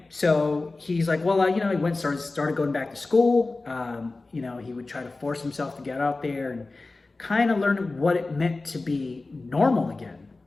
So he's like, well, you know, he started going back to school. You know, he would try to force himself to get out there and kind of learn what it meant to be normal again.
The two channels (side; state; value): right; quieter; 3.4 dB